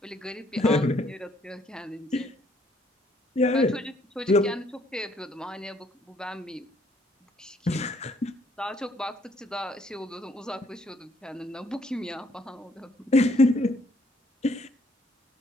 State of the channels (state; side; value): normal; both; correlation 0.66